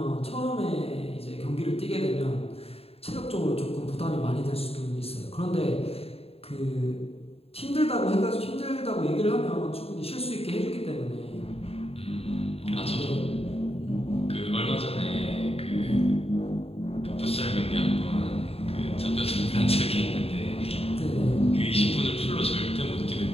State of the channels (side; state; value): right; late; 0.29 ms